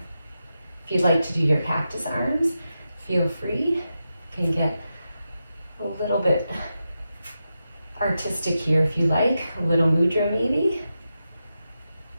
If you'd like to do your cactus arms, feel free. You can get a little bit artistic here if you like, a little mudra maybe.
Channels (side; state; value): both; inverted; correlation -0.89